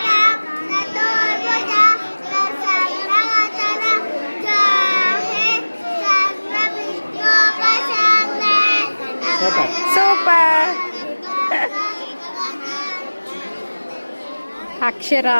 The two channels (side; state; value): both; inverted; correlation -1.00